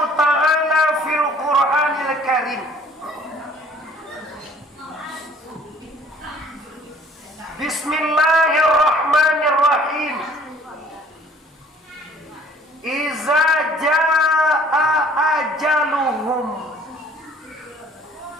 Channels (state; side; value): normal; both; correlation 0.55